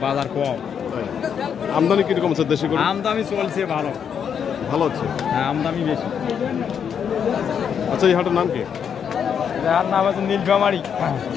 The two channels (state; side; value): quieter; right; 7.7 dB